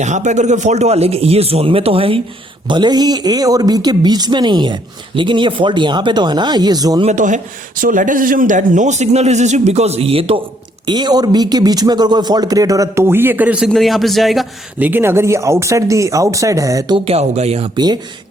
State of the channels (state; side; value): normal; both; correlation 0.68